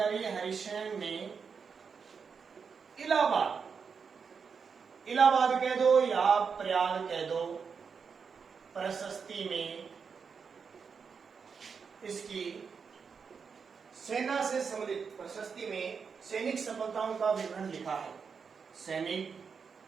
हरिशैन ने इलाहाबाद कह दो या प्रयाग कह दो, प्रशस्ति में इसकी सेना से सम्मिलित प्रशस्ति में सैनिक सफलताओं का विवरण लिखा है। सैनिक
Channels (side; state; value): left; quieter; 5.9 dB